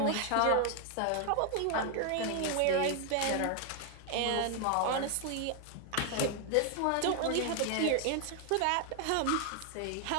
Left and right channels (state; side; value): different; both; correlation 0.00